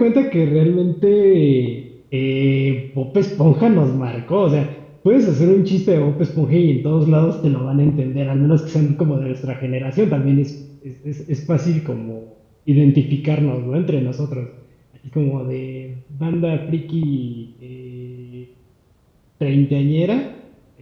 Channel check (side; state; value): both; identical; correlation 1.00